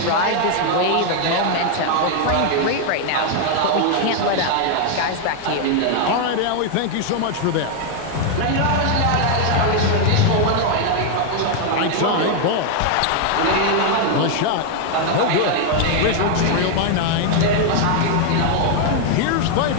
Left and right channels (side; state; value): both; different; correlation 0.00